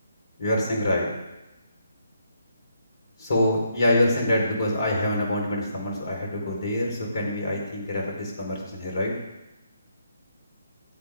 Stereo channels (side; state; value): both; inverted; correlation -0.75